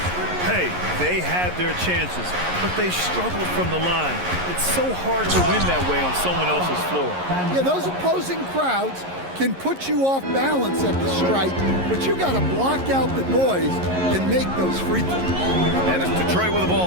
Hey, they had their chances, but they struggled from the line. It's so hard to win that way on someone else's floor. Yeah, those opposing crowds can put you off balance at the stripe, but you got to block out the noise and make those free throws. And it's Detroit with the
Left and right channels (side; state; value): left; late; 11 ms